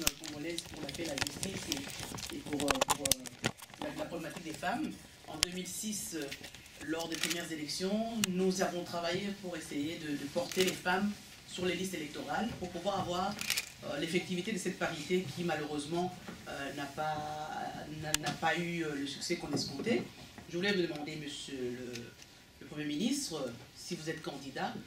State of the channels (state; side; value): identical; both; correlation 1.00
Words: congolaises pour la paix, la justice et pour la problématique des femmes. En 2006, lors des premières élections, nous avons travaillé pour essayer de porter les femmes sur les listes électorales pour pouvoir avoir l'effectivité de cette parité qui malheureusement n'a pas eu le succès qu'on escomptait. Je voulais vous demander, monsieur le Premier ministre, si vous êtes candidat,